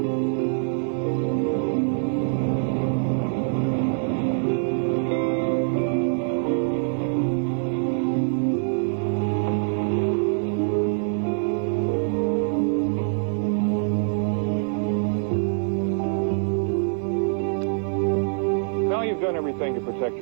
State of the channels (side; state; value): left; silent; 56 dB below the other